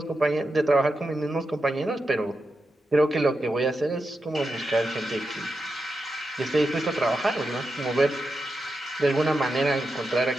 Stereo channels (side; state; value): both; normal; correlation 0.88